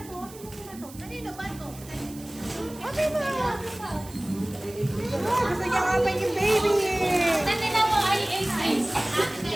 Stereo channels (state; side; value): noise; right; hiss, 19 dB below the sound